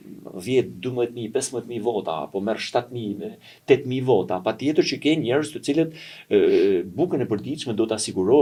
10, 12.000, 15.000 vota, apo merr 7.000, 8.000 vota, patjetër që ke njerëz të cilët bukën e përditshme do të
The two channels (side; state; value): both; identical; correlation 1.00